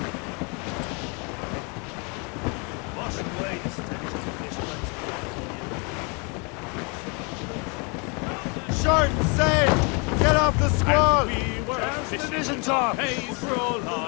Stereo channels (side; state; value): right; quieter; 33.0 dB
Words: Wash away the stench of fish. Short and sail! Get off the squall! The vision top! Pays for all